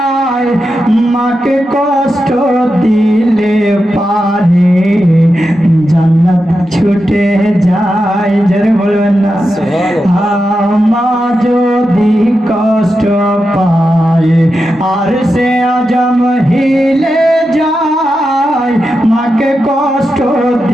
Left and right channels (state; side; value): normal; both; correlation 0.89